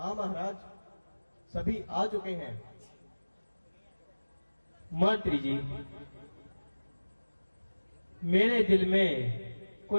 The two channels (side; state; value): both; inverted; correlation -1.00